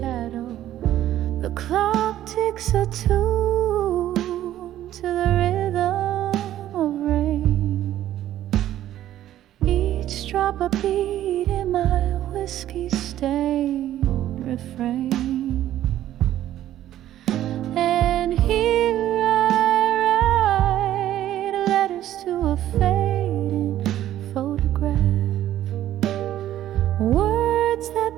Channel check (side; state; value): left; quieter; 12.7 dB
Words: The clock ticks a tune to the rhythm of rain. Each drop a beat in my whiskey-stained refrain. And here I write letters to a fading photograph, words